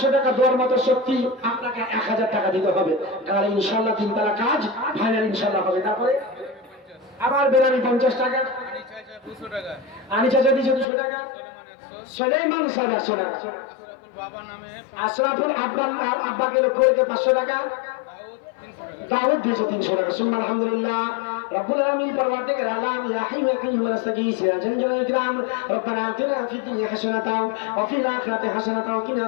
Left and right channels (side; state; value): right; drops out; at 10.9 s